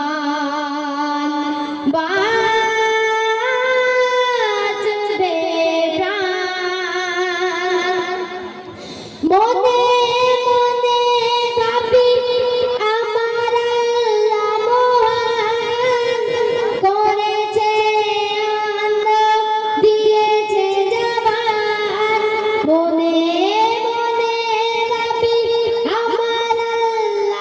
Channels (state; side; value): identical; both; correlation 1.00